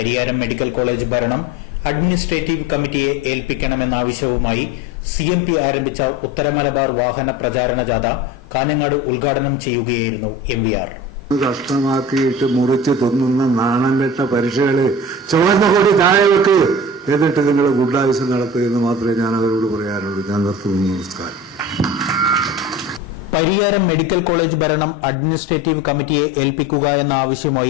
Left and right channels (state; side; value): normal; both; correlation 0.36